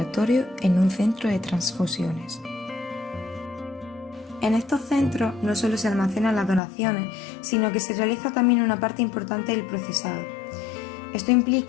en un centro de transfusiones. En estos centros no solo se almacenan las donaciones, sino que se realiza también una parte importante del procesado. Esto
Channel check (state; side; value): drops out; right; at 6.6 s